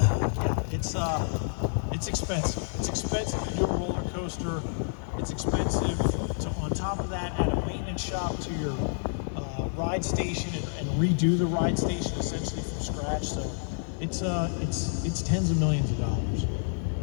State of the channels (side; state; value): right; silent; 59 dB below the other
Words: It's expensive. It's expensive to do a roller coaster. It's expensive to, on top of that, add a maintenance shop to your ride station and redo the ride station essentially from scratch. So it's tens of millions of dollars.